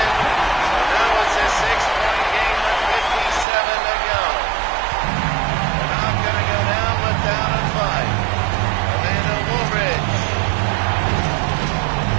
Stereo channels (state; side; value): drops out; left; at 3.5 s